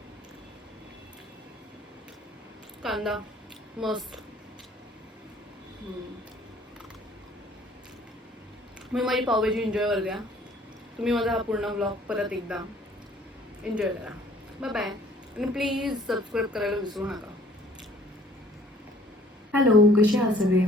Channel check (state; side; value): normal; both; correlation 0.56